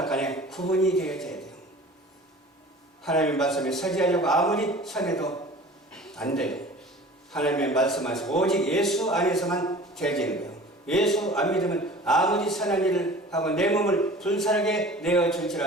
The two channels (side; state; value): both; normal; correlation 0.43